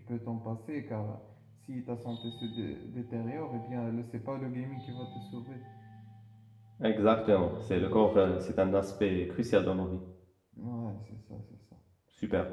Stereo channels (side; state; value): both; identical; correlation 1.00